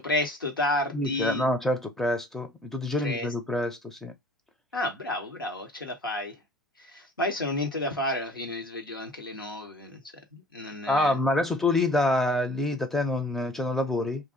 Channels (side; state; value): both; normal; correlation 0.50